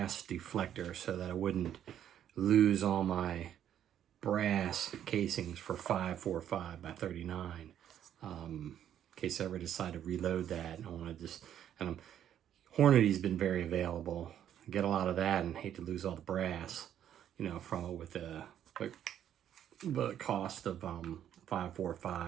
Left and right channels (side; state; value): left; quieter; 10.2 dB